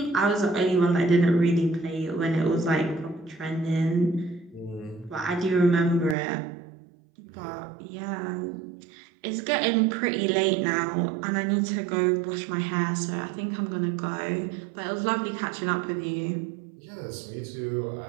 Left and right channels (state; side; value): drops out; left; at 6.2 s